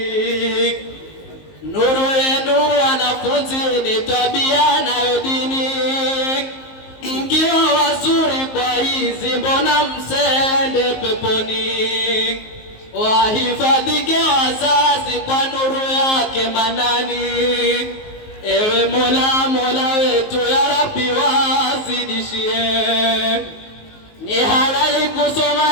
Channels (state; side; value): late; right; 19 ms